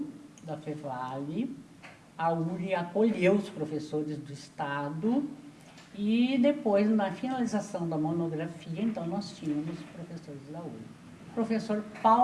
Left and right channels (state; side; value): identical; both; correlation 1.00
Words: da Fevale, a URI acolheu os professores do Estado e depois, na finalização da monografia, então nós tínhamos professores da URI. Professor